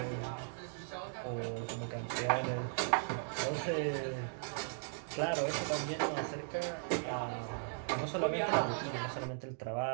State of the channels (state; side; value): silent; left; digital silence